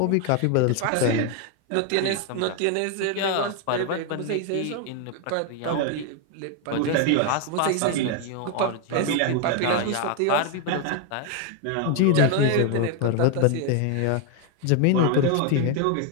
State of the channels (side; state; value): both; different; correlation 0.01